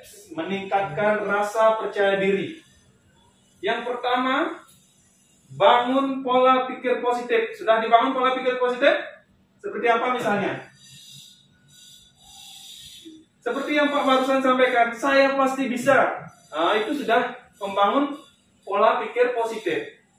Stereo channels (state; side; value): identical; both; correlation 1.00